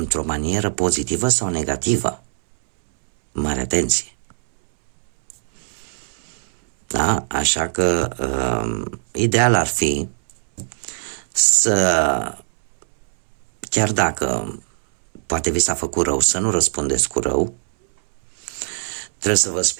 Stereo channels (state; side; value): silent; left; 65 dB below the other